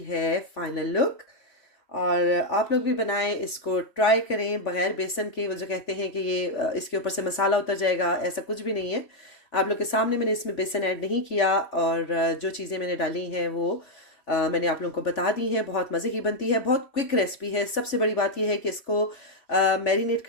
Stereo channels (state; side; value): late; right; 3.5 ms